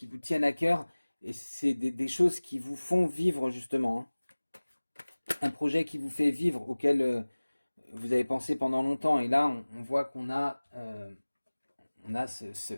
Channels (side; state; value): both; inverted; correlation -1.00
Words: vous tiennent à cœur, et c'est des choses qui vous font vivre justement, hein. Un projet qui vous fait vivre, auquel vous avez pensé pendant longtemps, et là on voit on a